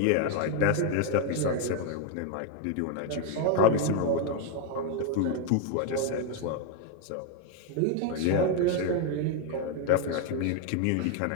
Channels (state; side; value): different; both; correlation 0.01